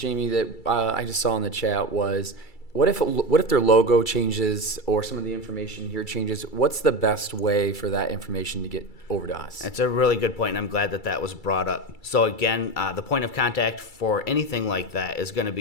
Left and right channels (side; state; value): right; late; 2.3 ms